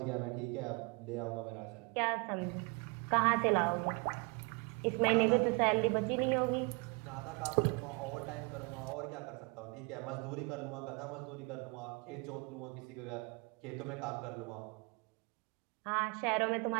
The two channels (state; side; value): quieter; left; 30.7 dB